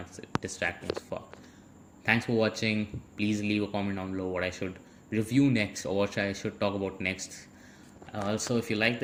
distracting as fuck. Thanks for watching. Please leave a comment down below what I should review next or what I should talk about next. Also, if you like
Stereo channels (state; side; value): identical; both; correlation 1.00